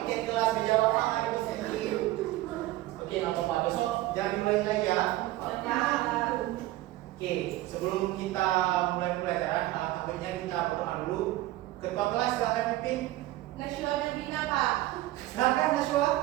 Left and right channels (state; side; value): quieter; left; 16.6 dB